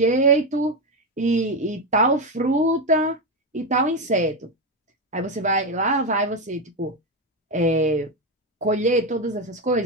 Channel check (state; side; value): normal; both; correlation 0.11